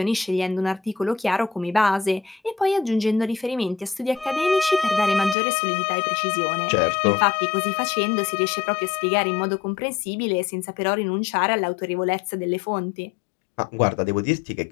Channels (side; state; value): right; drops out; at 5.4 s